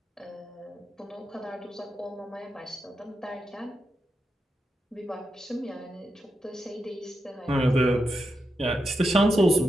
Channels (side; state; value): both; normal; correlation 0.86